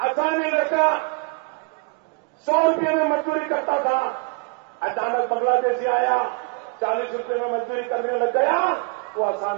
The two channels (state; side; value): quieter; left; 30.2 dB